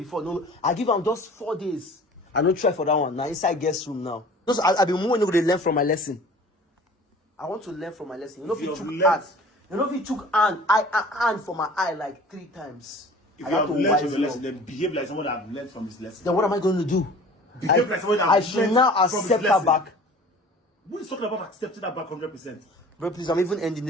no, I give them just 4 days. I don't try for that one. Now inside guest room now. Just I've been more to learn from my lesson. I want to learn from my lesson. You know if you took hand. You know if you took hand for my eye like 3 times. If you have learned from your lesson, then behave like someone that have learned from his lesson. Then what am I going to do? Behave like someone that I should now accept her back. Who is talking about accepting that back 100%? Bro, please, I'm even ending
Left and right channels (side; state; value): both; normal; correlation 0.45